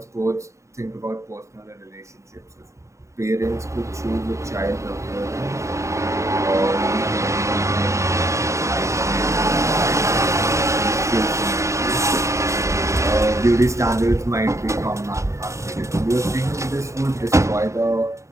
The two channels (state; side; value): late; left; 0.14 ms